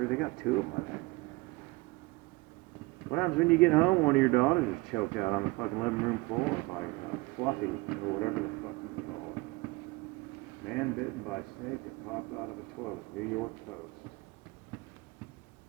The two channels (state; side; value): quieter; left; 22.7 dB